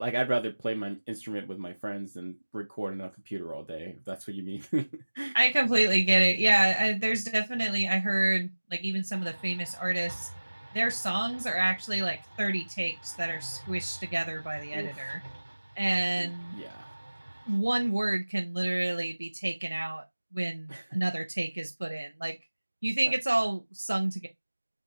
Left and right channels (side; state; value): both; inverted; correlation -1.00